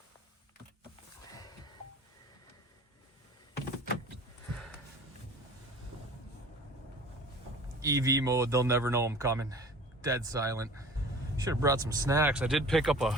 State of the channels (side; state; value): both; normal; correlation 0.43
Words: EV mode, they'll never know I'm coming. Dead silent. Should have brought some snacks. I did pick up